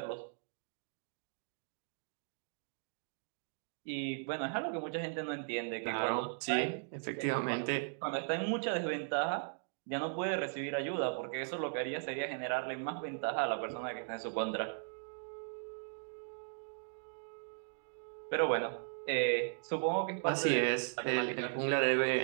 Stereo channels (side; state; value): left; silent; digital silence